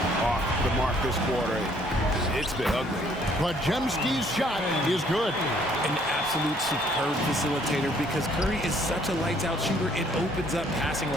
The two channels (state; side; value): normal; both; correlation 0.63